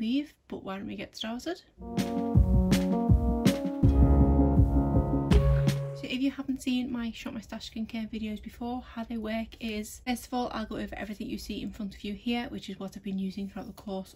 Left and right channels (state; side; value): identical; both; correlation 1.00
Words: leave, but why don't we get started? If you haven't seen my Shop My Stash skincare videos before, how they work is, first of all, I'll go over everything you see in front of you here, which is what I've been using throughout the course